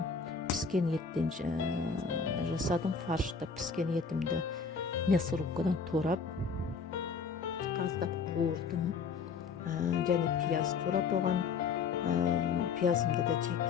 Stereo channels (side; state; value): right; quieter; 5.4 dB